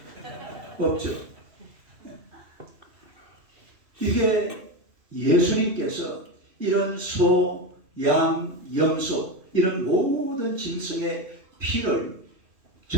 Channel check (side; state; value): left; late; 2.8 ms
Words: 없죠. 이게 예수님께서 이런 소, 양, 염소 이런 모든 짐승의 피를